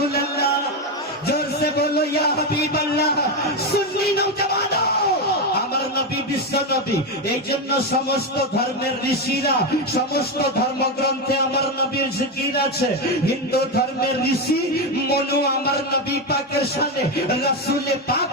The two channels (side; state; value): both; normal; correlation 0.10